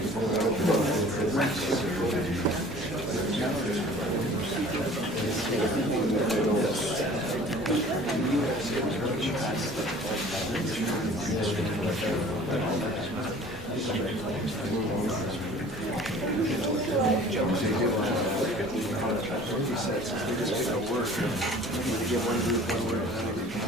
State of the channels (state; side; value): normal; both; correlation 0.47